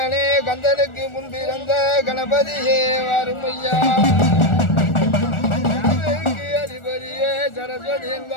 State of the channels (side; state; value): right; late; 1.4 ms